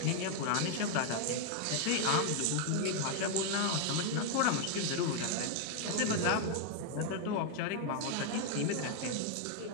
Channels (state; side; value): different; both; correlation 0.00